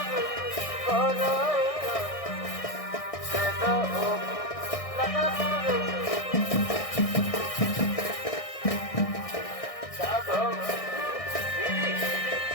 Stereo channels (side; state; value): right; late; 1.6 ms